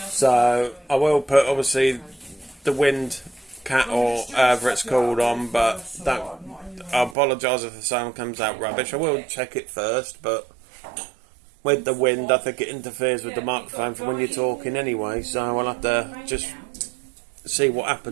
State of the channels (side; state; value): left; drops out; at 7.2 s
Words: So, I will put, obviously, the wind cat or whatever it's called on, but I apologise if the sound comes out rubbish. I will check it first, but with the wind, I think it interferes with the microphone for when you're talking anyway, so I'll have to just see what